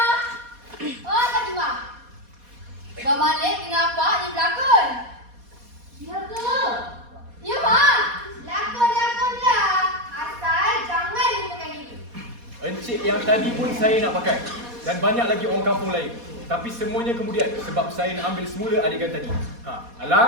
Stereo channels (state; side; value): late; left; 4.2 ms